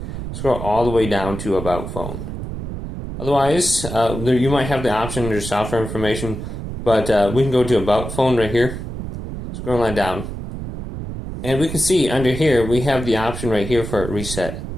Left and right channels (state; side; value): noise; right; rumble, 7 dB below the sound